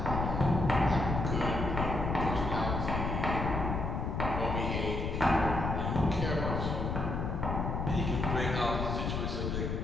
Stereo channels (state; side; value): noise; left; rumble, 2 dB below the sound